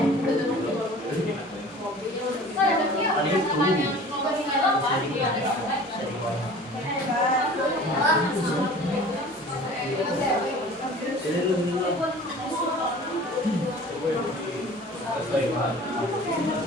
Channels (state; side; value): normal; both; correlation 0.44